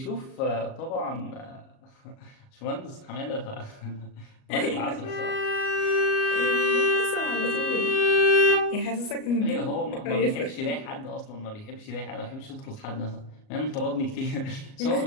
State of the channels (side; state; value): right; late; 38 ms